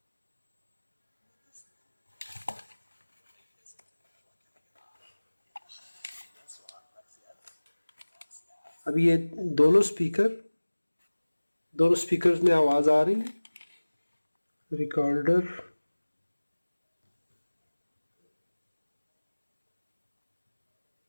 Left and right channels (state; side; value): inverted; both; correlation -1.00